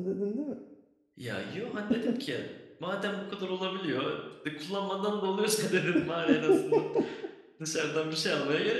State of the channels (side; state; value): both; identical; correlation 1.00